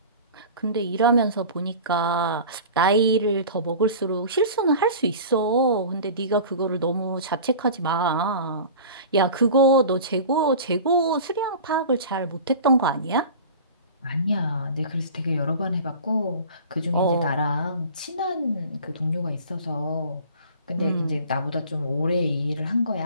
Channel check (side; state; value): both; inverted; correlation -0.38